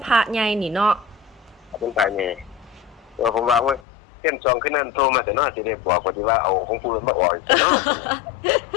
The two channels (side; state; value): right; drops out; at 3.8 s